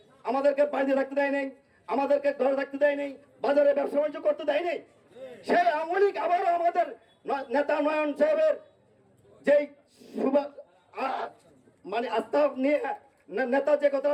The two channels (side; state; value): both; identical; correlation 1.00